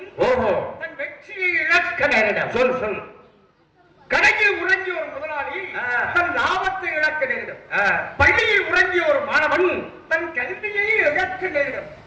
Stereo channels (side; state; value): both; identical; correlation 1.00